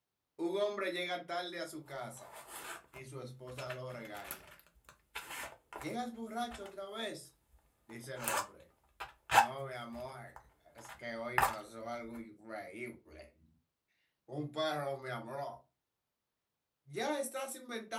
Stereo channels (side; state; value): both; identical; correlation 1.00